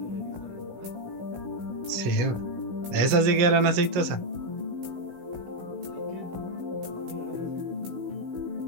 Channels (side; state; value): left; late; 16 ms